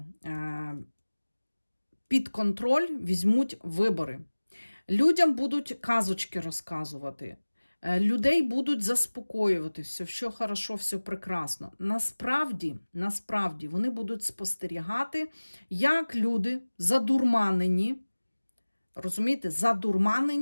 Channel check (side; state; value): both; inverted; correlation -1.00